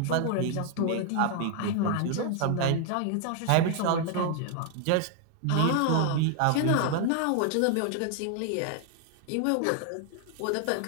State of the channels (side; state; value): both; different; correlation 0.00